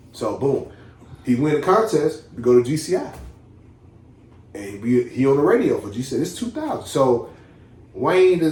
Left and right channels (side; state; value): both; identical; correlation 1.00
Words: So, boom. He win the contest. We go to GCI. And he on the radio for GCI. It's 2000. So, Wayne